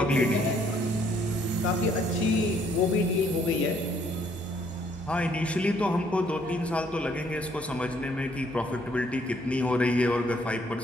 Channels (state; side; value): normal; both; correlation 0.66